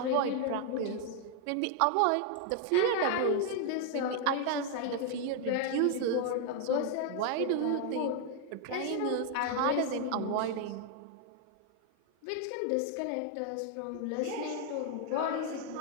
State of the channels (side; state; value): both; different; correlation 0.00